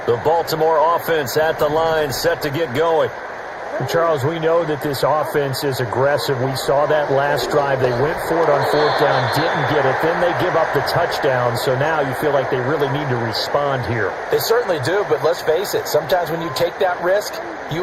The Baltimore offense at the line, set to get going. Charles, we know that this offense is aggressive. We saw that last drive. They went for it on 4th down, didn't get it. Then they give up the touchdown. So now you feel like they really need to respond here. They certainly do, but let's face it. Sometimes when you take that risk,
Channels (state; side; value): identical; both; correlation 1.00